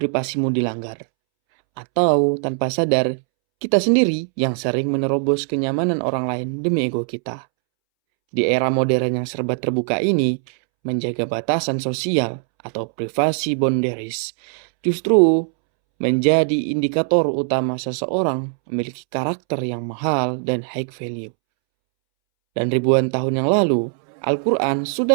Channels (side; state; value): left; silent; 65 dB below the other